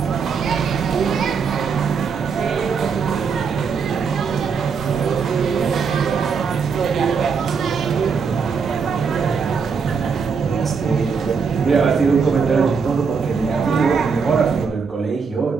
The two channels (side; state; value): left; quieter; 5.7 dB